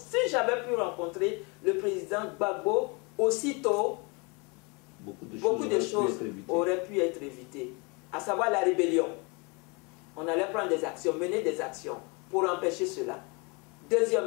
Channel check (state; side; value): quieter; right; 30.2 dB